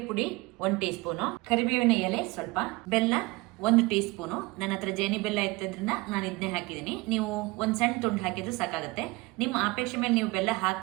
ಪುಡಿ 1 ಟೀ ಸ್ಪೂನ್, ಕರಿಬೇವಿನ ಎಲೆ ಸ್ವಲ್ಪ, ಬೆಲ್ಲ 1 ಟೀ ಸ್ಪೂನ್. ನನ್ನ ಹತ್ರ ಜೇನಿ ಬೆಲ್ಲ ಇತ್ತದ್ರಿಂದ ನಾನು ಇದನ್ನೇ ಹಾಕಿದ್ದೀನಿ. ನೀವು ಒಂದ್ ಸಣ್ಣ ತುಂಡು ಹಾಕಿದ್ರು ಸಾಕಾಗುತ್ತೆ. ನಿಮ್ಮ ಅಪೇಕ್ಷೆ ಮೇಲೆ ನೀವು ಬೆಲ್ಲ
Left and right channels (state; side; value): quieter; left; 23.2 dB